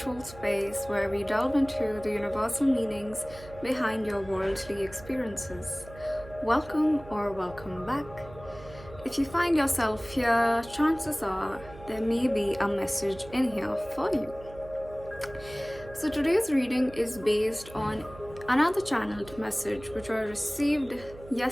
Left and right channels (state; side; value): noise; right; hum, 18 dB below the sound